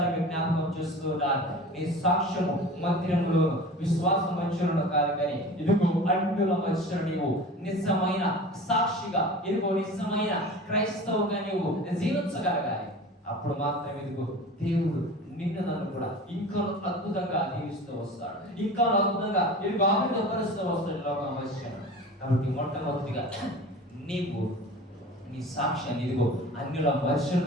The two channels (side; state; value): both; normal; correlation 0.37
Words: జ్ఞాపకం చేస్తూ ఉంటాను, నీ సాక్ష్యము మందిరములో విశ్వాస మధ్యలో కాదు, కానీ ఇదిగో అన్యుల మధ్యలో నీవు నిజమైన సాక్షిగా, ఇదిగో నిజమైన క్రైస్తవుగా నీవు జీవించగలగాలి. అప్పుడు మాత్రమే ఇదిగో దేవుడు నిన్ను నన్ను కూడా ఇంకా అద్భుతంగా దీవిస్తూ వస్తాడు, ఇంకా అద్భుతంగా ఇదిగో ఆనందపరుస్తూ వస్తాడు లోకం మధ్య. కాబట్టి మొట్టమొదటిగా నీవు నీ సాక్ష్యాన్ని ఇదిగో అన్యుల మధ్యను